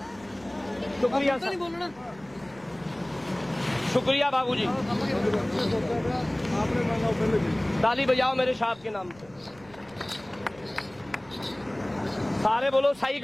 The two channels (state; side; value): noise; right; rumble, 25 dB below the sound